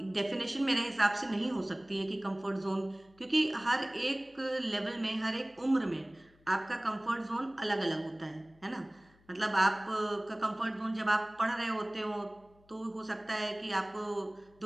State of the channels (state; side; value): noise; left; hum, 30 dB below the sound